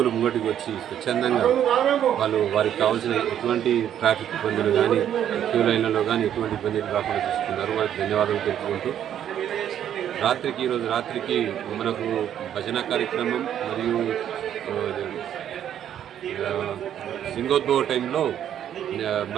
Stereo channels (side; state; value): left; quieter; 10.2 dB